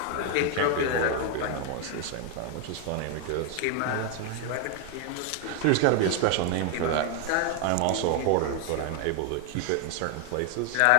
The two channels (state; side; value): different; both; correlation 0.01